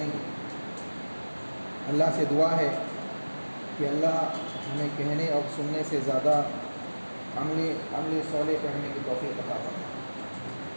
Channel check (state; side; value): inverted; both; correlation -1.00